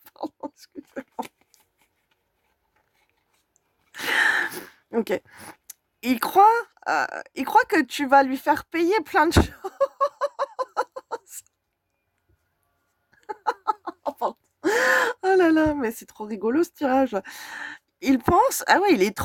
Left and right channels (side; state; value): both; identical; correlation 1.00